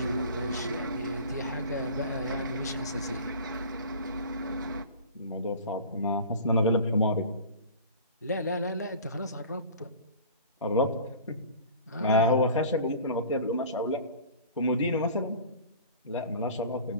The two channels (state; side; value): inverted; both; correlation -0.41